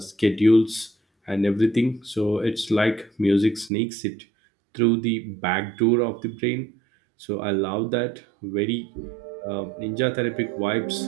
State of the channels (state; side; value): drops out; left; at 3.7 s